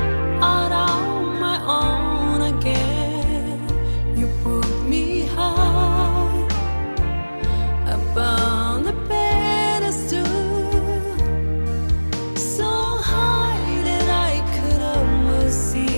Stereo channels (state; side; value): inverted; both; correlation -1.00